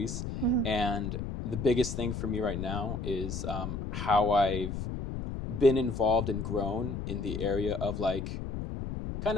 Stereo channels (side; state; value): left; noise; rumble, 5 dB below the sound